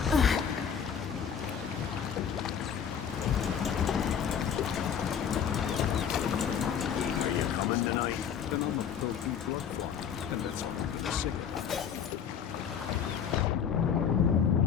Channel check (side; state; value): right; quieter; 7.9 dB